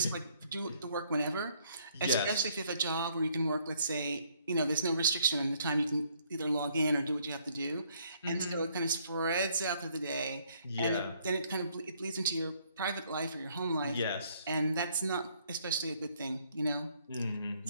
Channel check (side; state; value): both; inverted; correlation -0.66